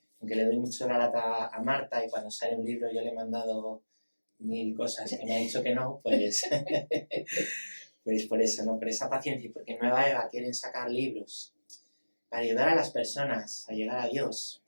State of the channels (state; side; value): inverted; both; correlation -1.00